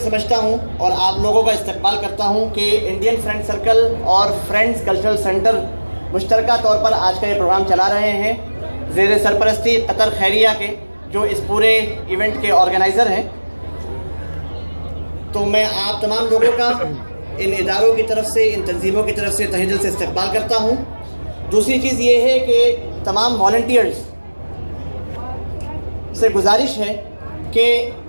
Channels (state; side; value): inverted; both; correlation -1.00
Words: سمجھتا ہوں اور آپ لوگوں کا استقبال کرتا ہوں کہ انڈین فرینڈ سرکل اور فرینڈز کلچرل سینٹر مشترکہ طور پر آج کا یہ پروگرام چلا رہے ہیں زیر سرپرستی قطر خیریہ کے، جو اس پورے ایونٹ کے آرگنائزر ہیں۔ تو میں آپ تمام لوگوں کا ان اداروں کی طرف سے، ان تنظیموں کی طرف سے تہہ دل سے استقبال کرتا ہوں۔ دوسری چیز یہ ہے کہ تمام والنٹیئرز سے گزارش ہے کہ